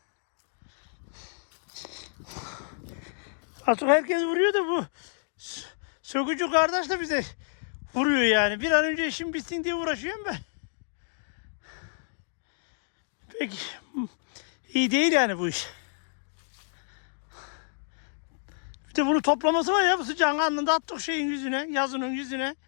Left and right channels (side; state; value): right; silent; digital silence